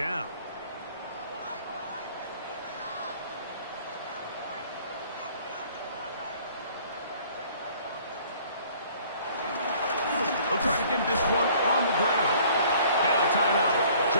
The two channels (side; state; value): both; inverted; correlation -0.55